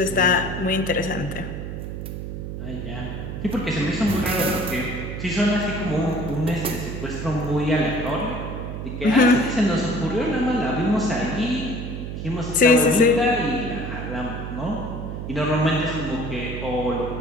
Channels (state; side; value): noise; right; hum, 6 dB below the sound